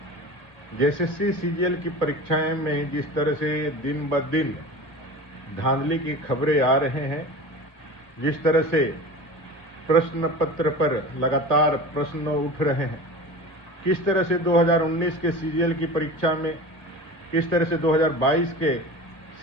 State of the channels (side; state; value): left; late; 1.8 ms